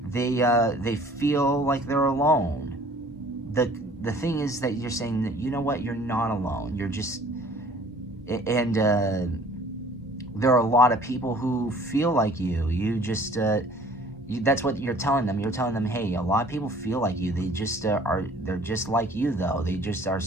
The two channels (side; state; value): both; normal; correlation 0.52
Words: feel like they're alone. The thing is that you're saying that, you know what, you're not alone. You're just, and there are a lot of people who feel like you. You just That's what you're telling them. You're telling them, hey, a lot of people feel like you. They just they're just like you, though. They just are